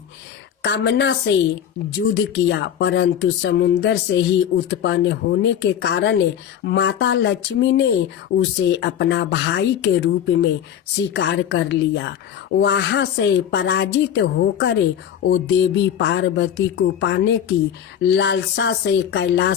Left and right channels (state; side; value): quieter; right; 9.4 dB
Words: कामना से युद्ध किया, परंतु समुद्र से ही उत्पन्न होने के कारण माता लक्ष्मी ने उसे अपना भाई के रूप में स्वीकार कर लिया। वहां से पराजित होकर वो देवी पार्वती को पाने की लालसा से